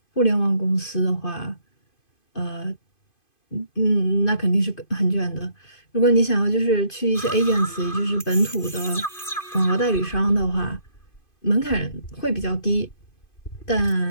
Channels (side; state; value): right; late; 2.5 ms